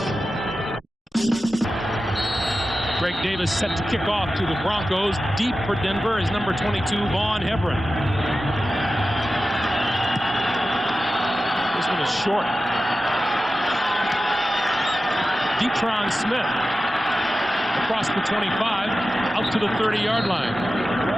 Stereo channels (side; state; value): both; normal; correlation 0.93